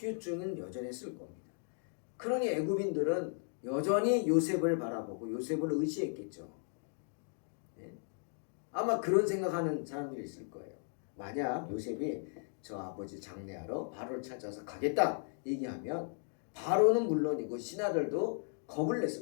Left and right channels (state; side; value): silent; right; 54 dB below the other